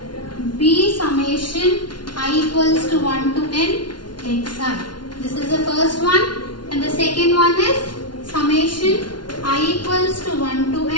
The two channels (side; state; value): right; late; 0.71 ms